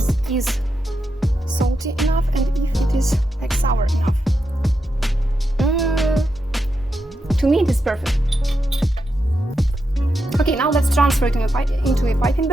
is salty enough and if it is like sour enough. To me, it is perfect. Okay, now let's transfer it into a piping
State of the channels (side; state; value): both; normal; correlation 0.86